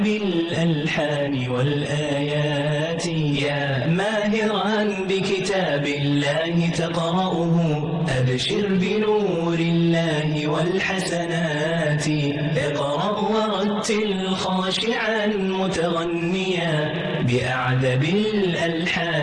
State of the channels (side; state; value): both; identical; correlation 1.00